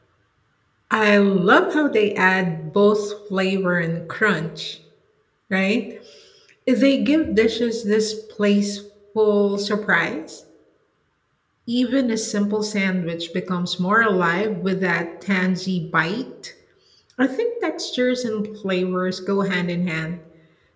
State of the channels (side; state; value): both; identical; correlation 1.00